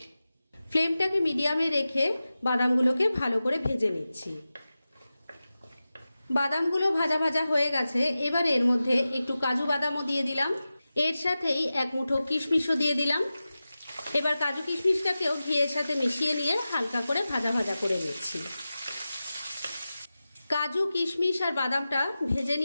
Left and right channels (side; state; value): both; inverted; correlation -0.94